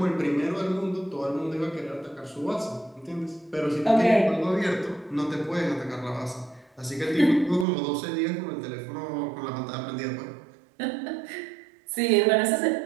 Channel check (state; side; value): drops out; left; at 7.7 s